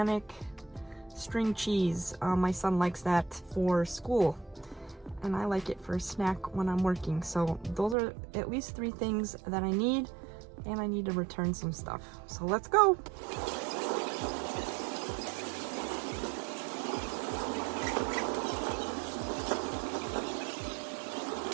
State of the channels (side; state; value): left; drops out; at 8.0 s